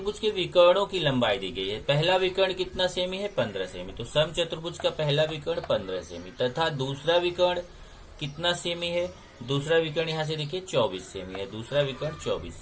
के विकर्णों की लंबाई दी गई है। पहला विकर्ण कितना सेमी है, 15 सेमी। तो समचतुर्भुज का पहला विकर्ण 15 सेमी तथा दूसरा विकर्ण कितना सेमी है, दूसरा विकर्ण यहाँ से देखिए 24 सेमी है, दूसरा विकर्ण 24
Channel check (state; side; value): identical; both; correlation 1.00